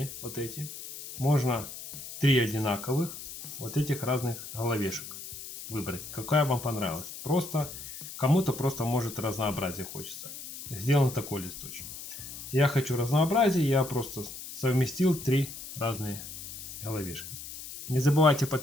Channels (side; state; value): left; noise; hiss, 11 dB below the sound